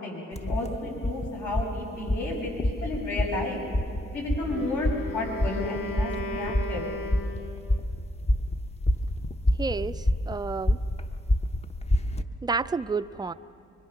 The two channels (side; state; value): both; normal; correlation 0.74